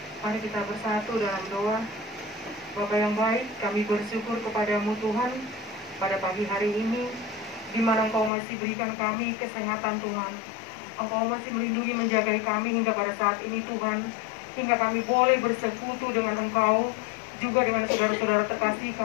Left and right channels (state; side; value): drops out; right; at 8.3 s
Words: Mari kita bersatu dalam doa. Bapa yang baik, kami bersyukur kepadamu Tuhan pada pagi hari ini, di mana Engkau masih berikan kami kesehatan Tuhan. Engkau masih melindungi menjaga kami hingga pada saat ini Tuhan, hingga kami boleh bersekutu dengan Engkau, juga dengan saudara-saudara terkasih